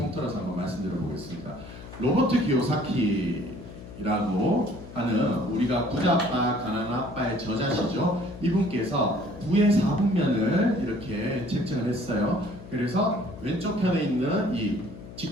한번 말씀드려 보겠습니다. 로버트 기요사키라고 하는 우리가 부자 아빠, 가난한 아빠의 저자시죠. 이분께서 부의 4분면을 이렇게 책정을 했어요. 그래서 왼쪽 편에 있는 이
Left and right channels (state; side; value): noise; left; hum, 15 dB below the sound